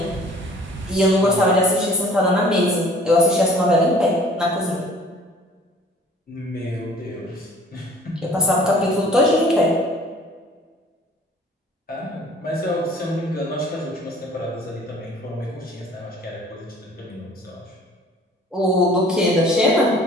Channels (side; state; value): both; normal; correlation 0.51